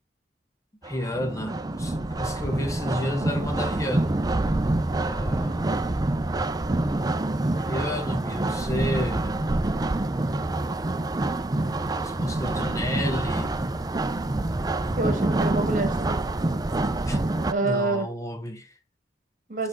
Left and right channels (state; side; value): normal; both; correlation 0.73